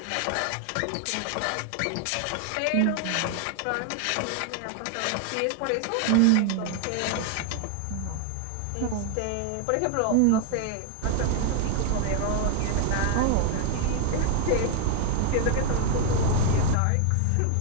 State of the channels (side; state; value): both; different; correlation 0.00